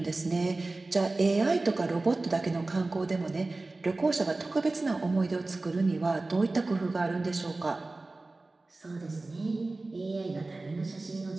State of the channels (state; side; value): quieter; left; 3.2 dB